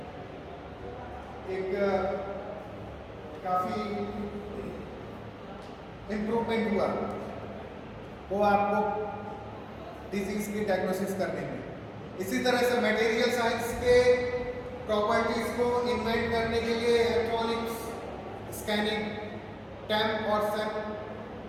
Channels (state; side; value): identical; both; correlation 1.00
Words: एक काफ़ी इम्प्रूवमेंट हुआ वो आपको डिजीज की डायग्नोसिस करने में। इसी तरह से मटेरियल साइंस के प्रॉपर्टीज को इन्वेंट करने के लिए इलेक्ट्रॉनिक्स स्कैनिंग टैम्प और सैम्प,